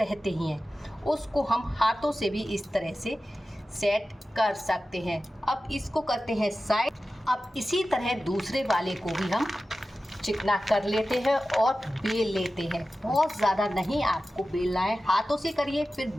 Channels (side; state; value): both; normal; correlation 0.94